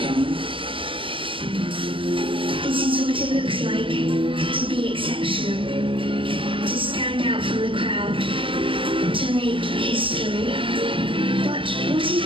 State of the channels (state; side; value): late; left; 0.25 ms